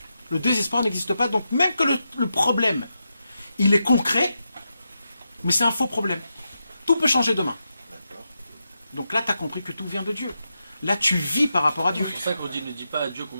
le désespoir n'existe pas. Donc même que le problème, il est concret, mais c'est un faux problème. Tout peut changer demain. Donc là, tu as compris que tout vient de Dieu. Là, tu vis par rapport à Dieu. C'est pour ça qu'on dit, ne dis pas à Dieu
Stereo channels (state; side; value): inverted; both; correlation -0.87